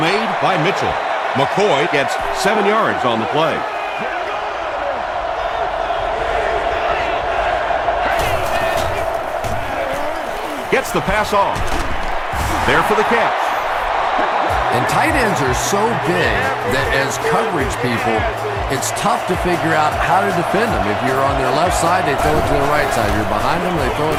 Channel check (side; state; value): both; identical; correlation 1.00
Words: made by Mitchell. McCoy gets 7 yards on the play. Gets the pass off. There for the catch. And tight ends are so big that as coverage people, it's tough to figure out how to defend them. If you're on their left side, they throw it to the right side. You're behind them, they throw it